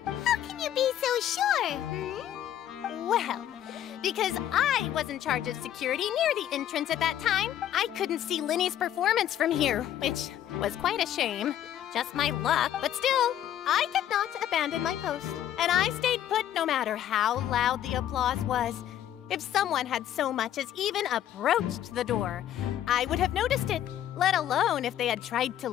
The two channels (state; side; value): quieter; right; 11.2 dB